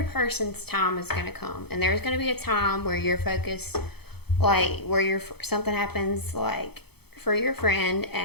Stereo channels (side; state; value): right; late; 0.97 ms